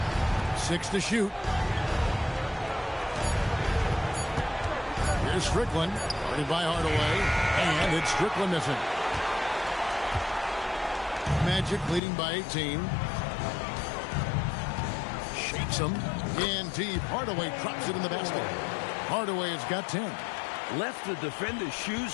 6 to shoot. Here's Strickland. Guarded by Hardaway. And it's Strickland missing. Magic leading by 18. Shakes him. In deep. Hardaway drops it in the basket. Hardaway has got 10. Left the defender's shoes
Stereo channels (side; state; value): right; drops out; at 12.0 s